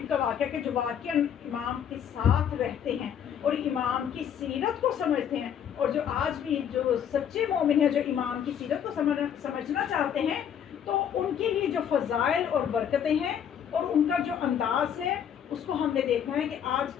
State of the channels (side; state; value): right; quieter; 8.8 dB